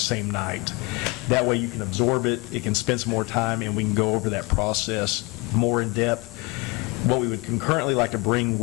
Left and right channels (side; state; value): right; quieter; 26.2 dB